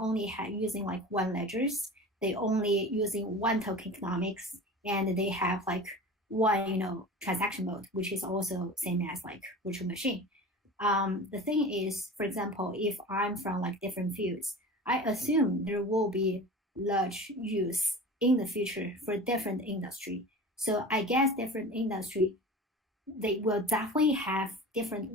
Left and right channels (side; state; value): both; normal; correlation 0.35